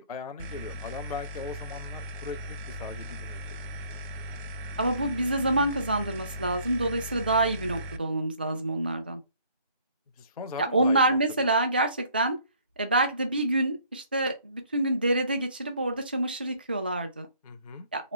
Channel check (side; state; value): both; inverted; correlation -0.60